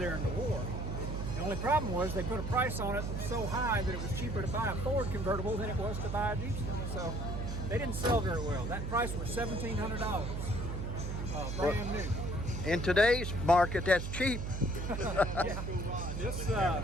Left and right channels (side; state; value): right; noise; hum, 3 dB below the sound